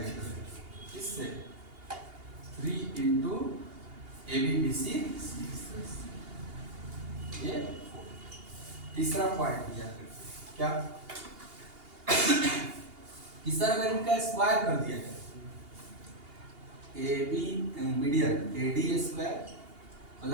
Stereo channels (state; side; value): late; left; 2.8 ms